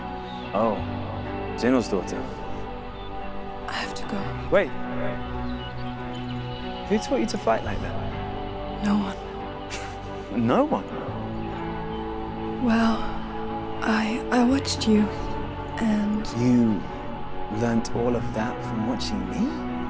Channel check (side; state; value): both; identical; correlation 1.00